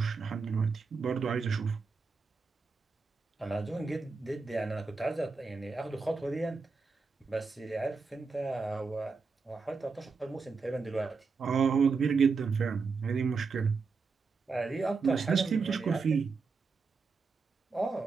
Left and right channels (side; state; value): left; quieter; 4.7 dB